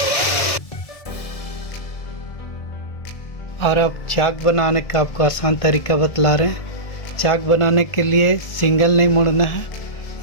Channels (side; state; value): right; late; 1.7 ms